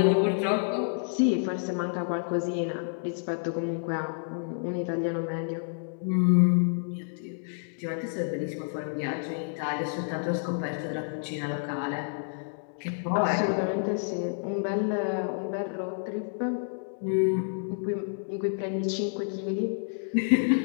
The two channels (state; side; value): silent; right; digital silence